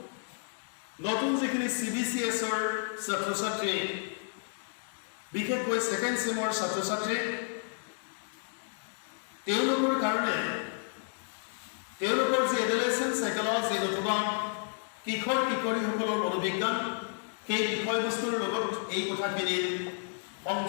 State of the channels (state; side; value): silent; right; 57 dB below the other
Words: নতুন যিখিনি CBCS ৰ ছাত্ৰ-ছাত্ৰী বিশেষকৈ সেকেন্ড সেমৰ ছাত্ৰ-ছাত্ৰী তেওঁলোকৰ কাৰণে তেওঁলোকৰ যে এডোলেসেন্ট সাইকোলজি নতুবা কিশোৰ-কিশোৰীসকলৰ মনোবিজ্ঞান সেই বিষয়বস্তুৰ লগত এই কথাখিনিৰ